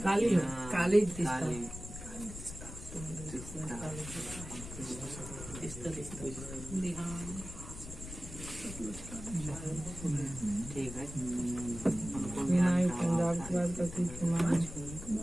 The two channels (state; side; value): noise; left; rumble, 11 dB below the sound